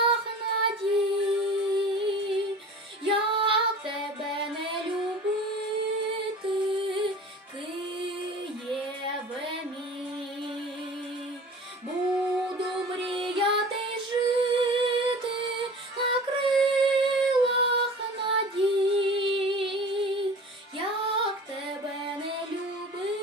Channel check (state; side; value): normal; both; correlation 0.40